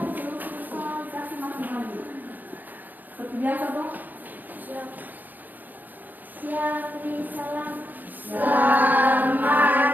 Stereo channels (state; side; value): late; left; 0.085 ms